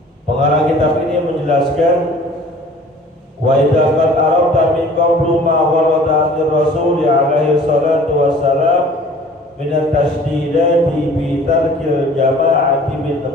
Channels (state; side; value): normal; both; correlation 0.48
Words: Pengarang kitab ini menjelaskan wa idza qad arafta min qawli ma warada an Rasul alaihi salatu wassalam min at-tashdidati bi tarkil jama'ati min